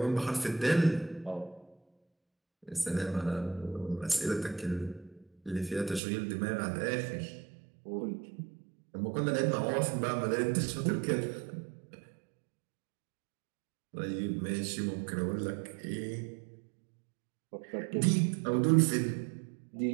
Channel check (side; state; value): left; drops out; at 6.0 s